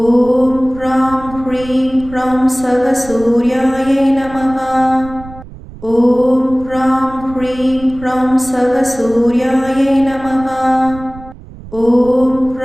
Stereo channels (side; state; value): right; noise; rumble, 17 dB below the sound